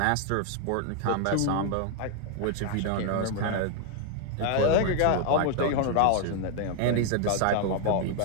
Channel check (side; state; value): both; different; correlation 0.00